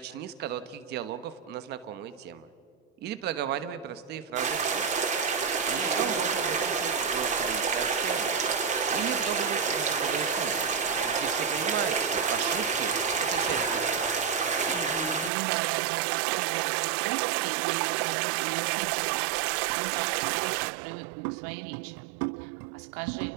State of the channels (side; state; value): left; drops out; at 15.3 s